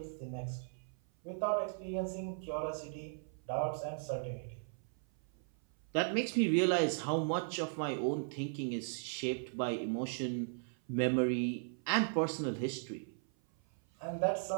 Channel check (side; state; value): left; silent; 53 dB below the other